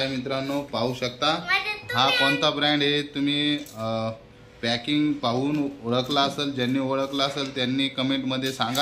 मित्रांनो पाहू शकता हा कोणता ब्रँड आहे। तुम्ही पॅकिंग पाहून ओळखला असेल, ज्यांनी ओळखला असेल त्यांनी कमेंटमध्ये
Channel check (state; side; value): identical; both; correlation 1.00